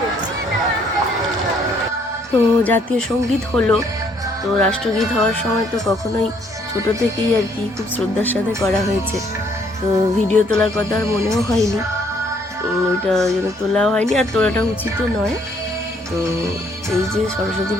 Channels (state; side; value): normal; both; correlation 0.66